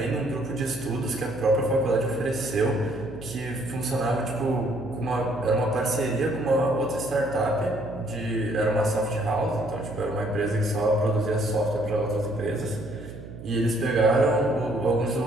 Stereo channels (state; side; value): noise; right; hum, 14 dB below the sound